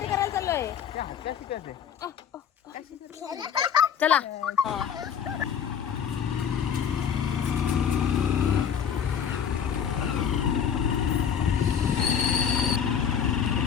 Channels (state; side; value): quieter; right; 8.0 dB